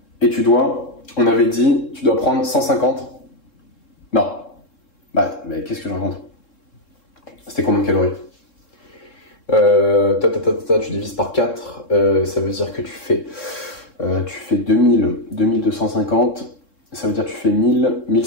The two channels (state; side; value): late; right; 3.7 ms